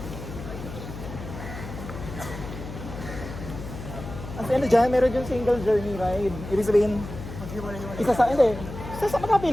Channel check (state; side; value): noise; left; hum, 10 dB below the sound